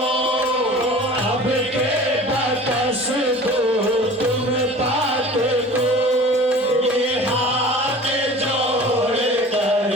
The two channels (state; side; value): normal; both; correlation 0.42